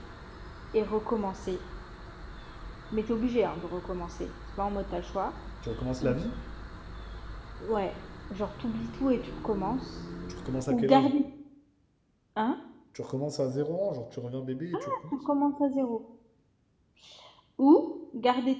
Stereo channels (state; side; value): identical; both; correlation 1.00